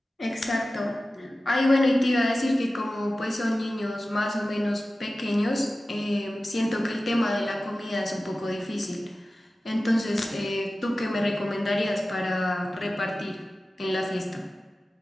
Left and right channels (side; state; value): both; normal; correlation 0.95